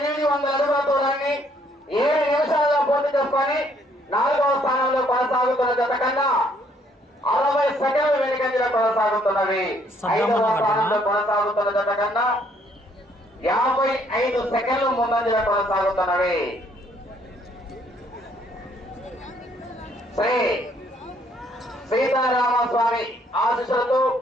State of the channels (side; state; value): both; normal; correlation 0.66